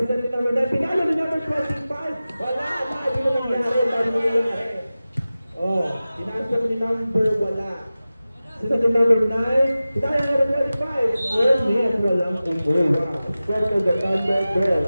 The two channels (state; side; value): inverted; both; correlation -0.96